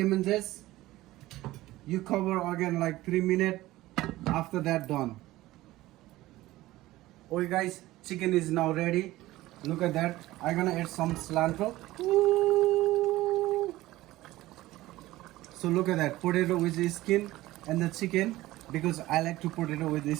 zest, you cover again like 3 minutes. After that, done. Okay guys, chicken is now ready. Look at that. I'm gonna add some cilantro. Ooh. So look at that, potato with the skin and the chicken, because I like to potato with the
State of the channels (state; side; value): quieter; left; 17.2 dB